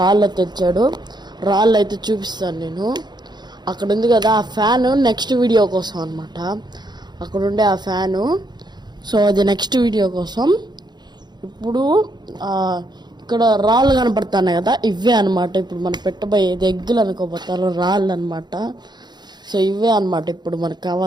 తెచ్చాడు, రాళ్ళు అయితే చూపిస్తాను నేను. అక్కడ ఉంది కదా ఆ ఫ్యాను, నెక్స్ట్ వీడియో కోసం అనమాట. అక్కడ ఉండే ఆ ఫ్యాను, సో అది నెక్స్ట్ వీడియో కోసం. ఇప్పుడు ఇక్కడ రాళ్ళు కనపడుతున్నాయి కదా, ఇవే అనమాట ఇప్పుడు మనం పెట్టబోయేది. ఎగ్గులు అనుకోపోతారు, రాళ్ళు అనమాట. సో ఇవే అనమాట ఇప్పుడు మనకు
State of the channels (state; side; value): late; left; 0.21 ms